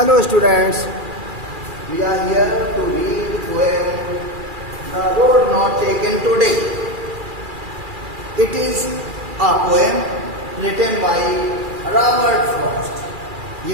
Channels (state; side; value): late; left; 2.4 ms